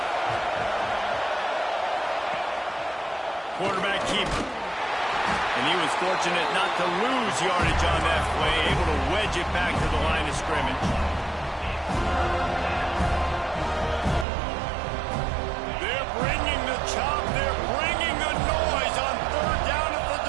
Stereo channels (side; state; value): left; drops out; at 14.2 s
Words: Quarterback keeper. And he was fortunate not to lose yardage on that play, able to wedge it back to the line of scrimmage. They're bringing the chop. They're bringing the noise on 3rd down at the